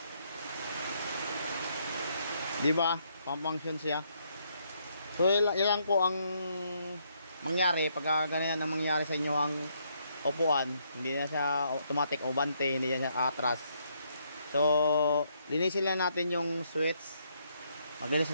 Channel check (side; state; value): both; inverted; correlation -0.73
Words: Di ba? Pang-function siya. So ilang po ang mangyari pag ganyan ang mangyari sa inyo ang upuan, hindi na siya automatic umabante, hindi na siya atras. So linisin lang natin yung switch. Maglinis